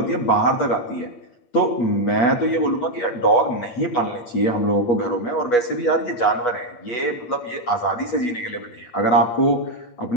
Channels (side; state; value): right; late; 8.3 ms